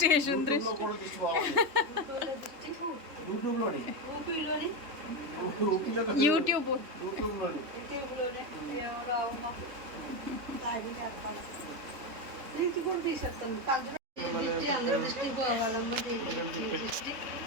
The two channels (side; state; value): left; late; 3.5 ms